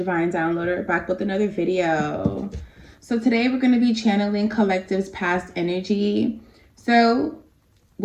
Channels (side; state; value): both; identical; correlation 1.00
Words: Downloader, back with another video. So today we're going to be channeling Collective's past energy. So